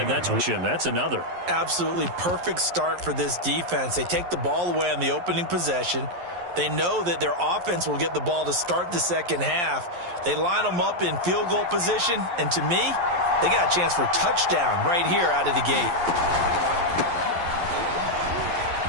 another. Absolutely perfect start for this defense. They take the ball away on the opening possession. They know that their offense will get the ball to start the second half. They line them up in field goal position, and to me, they got a chance for a touchdown right here out of the gate.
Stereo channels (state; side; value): late; left; 11 ms